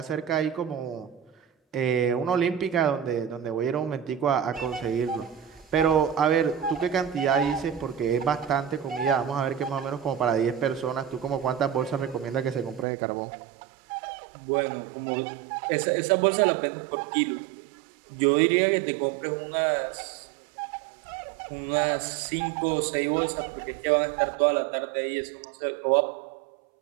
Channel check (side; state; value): left; drops out; at 12.9 s